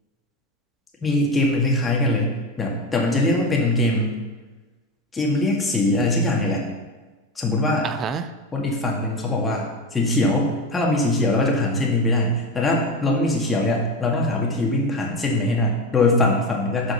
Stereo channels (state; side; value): normal; both; correlation 0.19